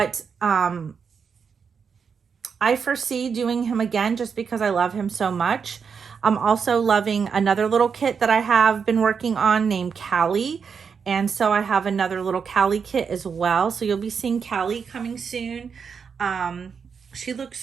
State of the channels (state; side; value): quieter; left; 6.2 dB